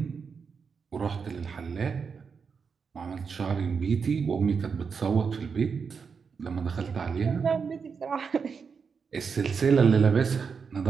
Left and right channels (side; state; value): left; quieter; 5.8 dB